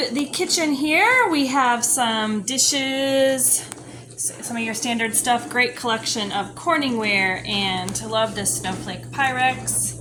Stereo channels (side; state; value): both; identical; correlation 1.00